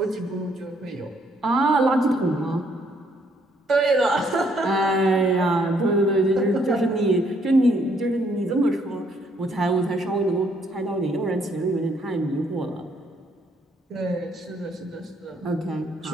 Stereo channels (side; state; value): both; normal; correlation 0.69